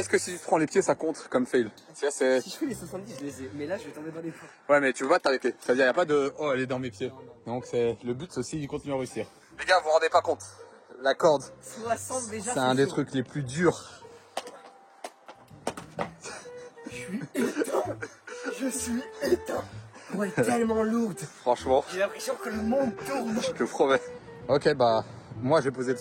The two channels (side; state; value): both; identical; correlation 1.00